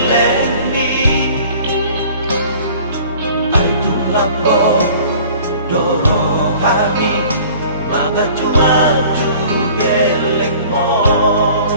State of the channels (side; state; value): both; inverted; correlation -0.48